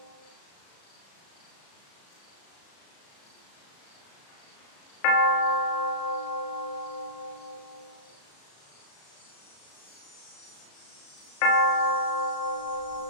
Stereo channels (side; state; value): right; late; 35 ms